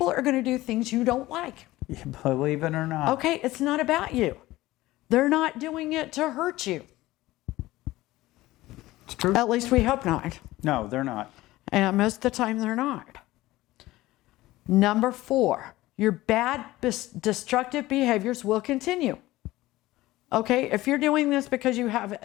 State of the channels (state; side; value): quieter; right; 17.6 dB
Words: are going to do things you don't like. Believe it or not. Okay, it's not about you. They're not doing it to hurt you. It's true. At least we hope not. No, they're not. And most of the time they're not. Number 4, your bad destructive behaviors will continue. Okay, if you're doing this because you have